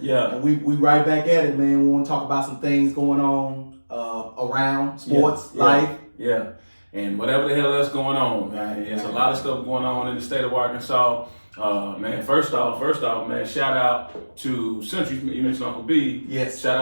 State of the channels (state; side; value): inverted; both; correlation -1.00